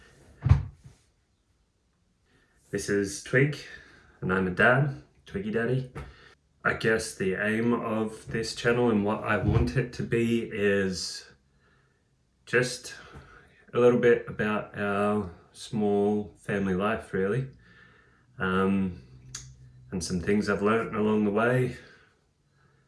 This is Twig, and I'm a dad, Twiggy Daddy. I guess the aim of this channel and what I want it to be is just a little bit about our small family life, really, and some things I've learned along the way.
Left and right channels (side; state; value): both; identical; correlation 1.00